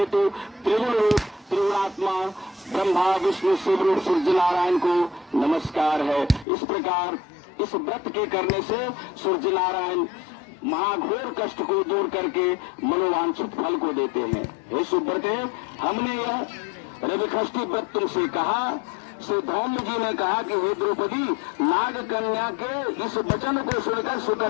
त्रिगुण रूप त्रिगुणात्मा ब्रह्मा विष्णु शिव रूप सूर्य नारायण को नमस्कार है। इस प्रकार इस व्रत के करने से सूर्य नारायण महाघोर कष्ट को दूर करके मनोवांछित फल को देते हैं। हे सुब्रते, हमने यह रविषष्ठी व्रत तुमसे कहा। श्री धौम्य जी ने कहा कि हे द्रौपदी, नाग कन्या के इस वचन को सुनकर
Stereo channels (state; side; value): drops out; right; at 6.5 s